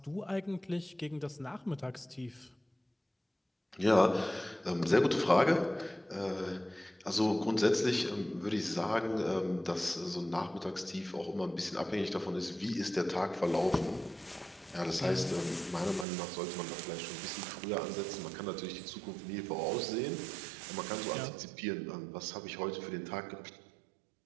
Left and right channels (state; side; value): drops out; left; at 16.1 s